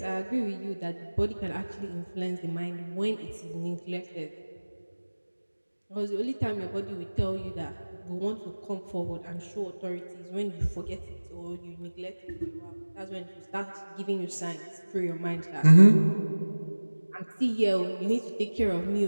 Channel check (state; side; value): inverted; both; correlation -1.00